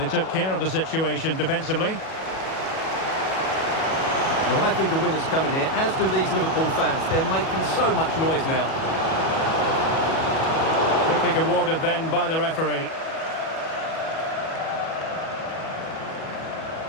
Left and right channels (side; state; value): right; late; 37 ms